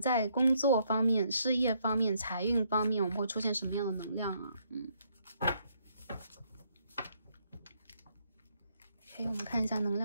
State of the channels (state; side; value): inverted; both; correlation -0.71